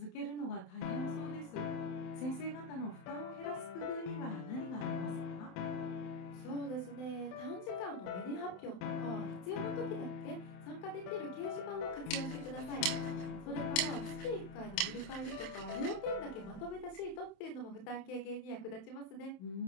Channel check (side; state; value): right; late; 27 ms